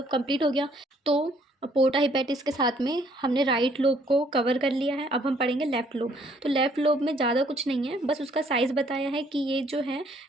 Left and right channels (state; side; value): normal; both; correlation 0.64